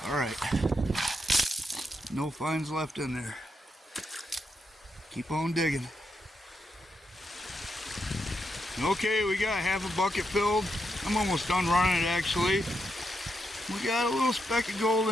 Alright. No finds left in there. Keep on digging. Okay, we got half a bucket filled. I'm almost done running it actually. We got a little speck of gold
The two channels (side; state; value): both; normal; correlation 0.82